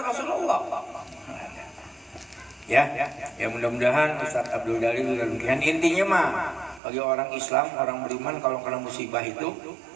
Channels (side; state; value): left; drops out; at 6.8 s